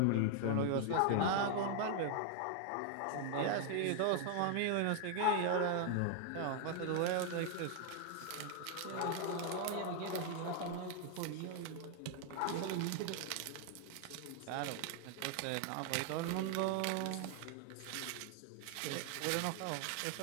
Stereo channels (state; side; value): different; both; correlation 0.00